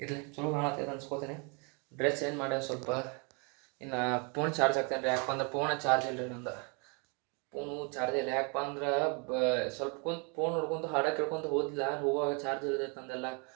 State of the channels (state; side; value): quieter; left; 34.4 dB